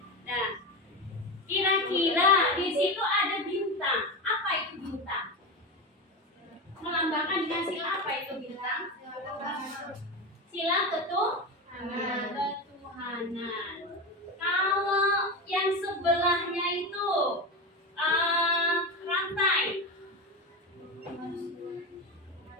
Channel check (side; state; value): both; normal; correlation 0.20